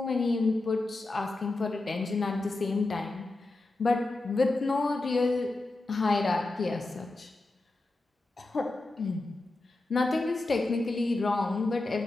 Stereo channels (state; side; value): quieter; right; 3.0 dB